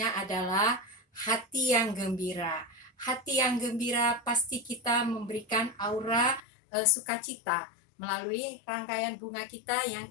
adalah hati yang gembira. Hati yang gembira pasti kita memberikan aura sukacita melalui rangkaian bunga kita yang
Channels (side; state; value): right; drops out; at 6.4 s